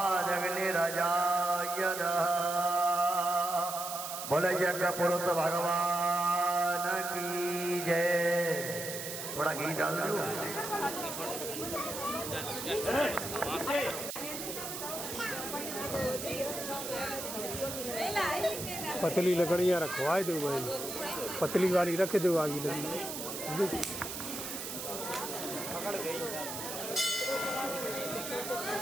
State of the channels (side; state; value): right; noise; hiss, 7 dB below the sound